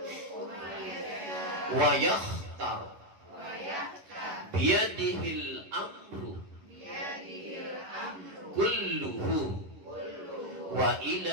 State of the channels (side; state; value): left; late; 11 ms